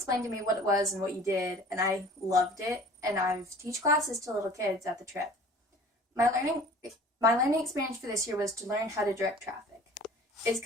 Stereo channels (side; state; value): both; normal; correlation 0.46